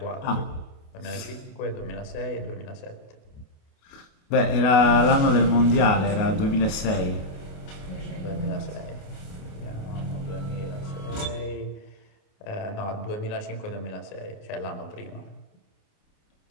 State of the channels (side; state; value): right; late; 28 ms